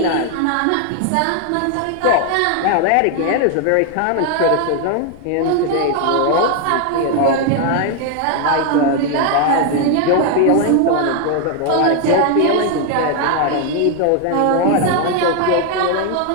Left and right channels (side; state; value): both; different; correlation 0.00